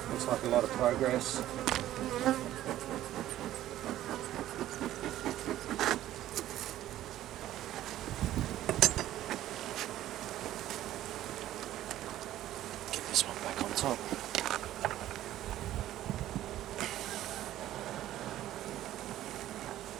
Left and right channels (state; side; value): quieter; left; 13.4 dB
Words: Looks like a lot of progress. Get this one back on top.